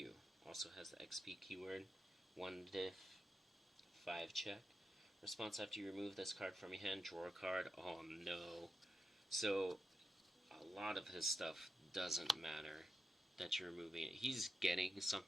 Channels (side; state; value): both; normal; correlation 0.89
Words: Also has the XP keyword. 1 diff, 5 check. Response after you remove this card from your hand, draw a card. Oh no. So, a lot of his stuff doesn't matter that you're removing it. He's getting